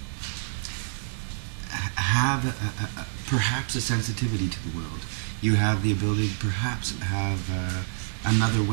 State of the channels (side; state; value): left; silent; 60 dB below the other